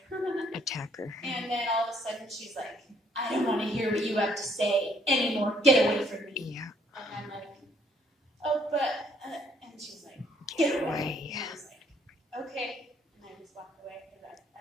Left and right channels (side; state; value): both; normal; correlation 0.65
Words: attacker. And then all of a sudden she's like, I don't want to hear what you have to say anymore. Get away from me. Yeah. And I'm like, oh, but and she's like, get away. And I was like, okay. And I just walked away because